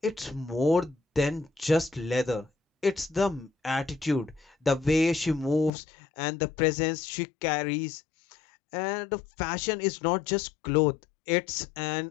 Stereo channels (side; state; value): right; drops out; at 5.7 s